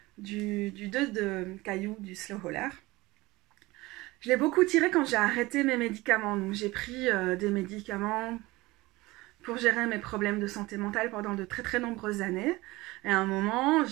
2 de Caillou, du Slow Roller. Je l'ai beaucoup tiré quand j'ai arrêté mes médicaments. Donc j'ai pris des médicaments pour gérer mes problèmes de santé mentale pendant de très très nombreuses années. Et à un moment,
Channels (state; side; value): quieter; left; 20.6 dB